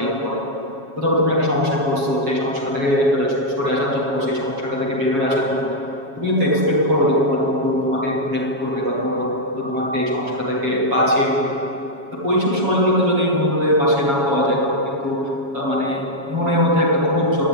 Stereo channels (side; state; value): left; late; 7.2 ms